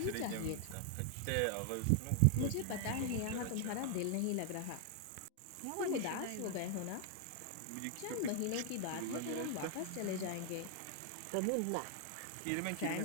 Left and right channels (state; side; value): different; both; correlation 0.00